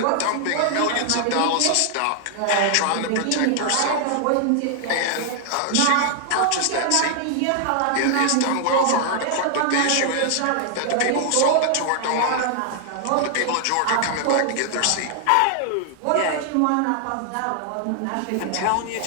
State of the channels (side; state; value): both; different; correlation 0.00